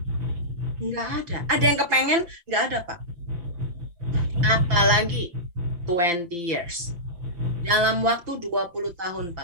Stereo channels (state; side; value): late; left; 5.8 ms